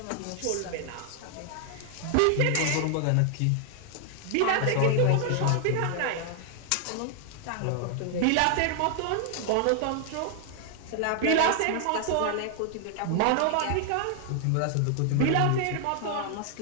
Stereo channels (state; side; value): different; both; correlation 0.00